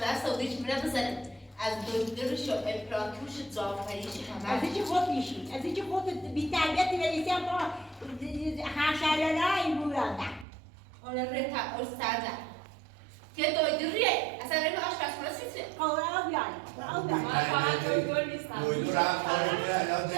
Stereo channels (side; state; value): left; drops out; at 10.5 s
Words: سعودیش میره بزنم. از دکترش و امپراتورش جعفریش همه. از اینکه خود میشی، از اینکه خود بی تربیتی بریسی هم با حشرالله این بوراده. حالا ره تا استاده. که دویدریه. اصلا ره آشپزخونه سیسه. قوله او بیاری، او بیاری. من فقط دکتر نیستم. دویدو رفت داره الان